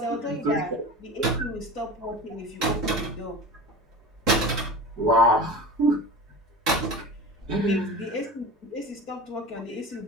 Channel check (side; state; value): both; normal; correlation 0.33